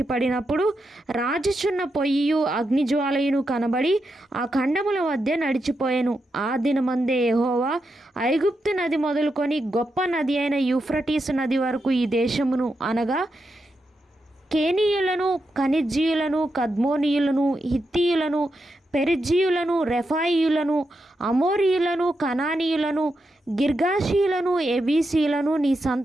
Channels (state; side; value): normal; both; correlation 0.86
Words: పడినప్పుడు రాజుచున్న పొయ్యియు అగ్నిజ్వాలయును కనబడి ఆ ఖండముల మధ్య నడిచిపోయెను. ఆ దినమందే యెహోవా ఐగుప్తు నది మొదలుకొని గొప్ప నది అయిన యూఫ్రటీసు నది వరకు ఈ దేశమును అనగా కేనీయులను, కనిజ్జీయులను, కద్మోనీయులను, హిత్తీయులను, పెరిజ్జీయులను, రెఫాయియులను, అమోరీయులను, కనానీయులను, గిర్గాషీయులను, ఎబీసీయులను నీ